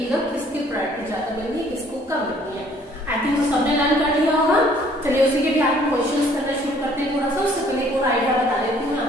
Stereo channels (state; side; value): normal; both; correlation 0.59